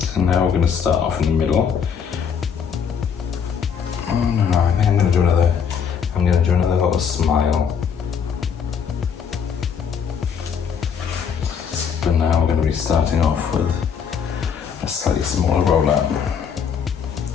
now we're going to start off in the middle. Oh no, I think I'm going to do another little smile. But now we're going to be starting off with a slightly smaller roller.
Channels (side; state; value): right; quieter; 7.1 dB